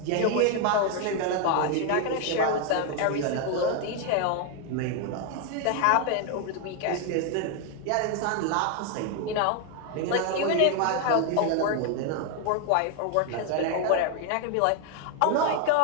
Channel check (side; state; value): both; different; correlation 0.01